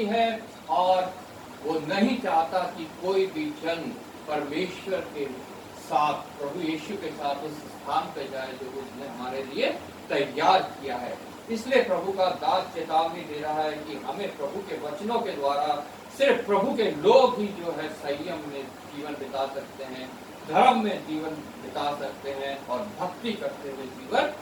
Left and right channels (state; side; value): identical; both; correlation 1.00